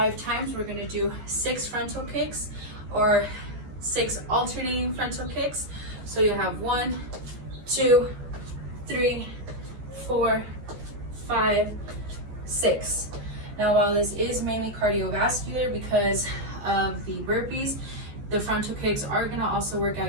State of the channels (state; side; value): late; left; 14 ms